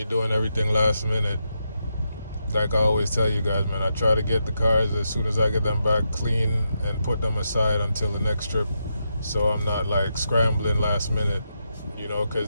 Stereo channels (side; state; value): both; inverted; correlation -0.84